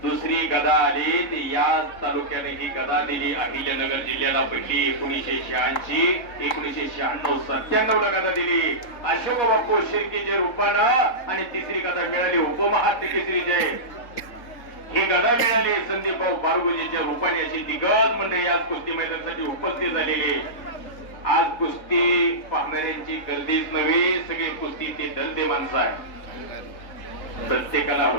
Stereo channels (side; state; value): right; late; 3.6 ms